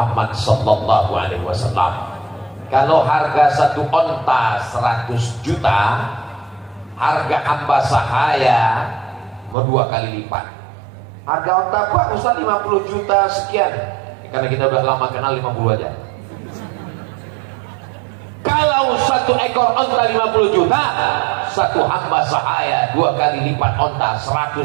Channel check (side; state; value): left; drops out; at 9.6 s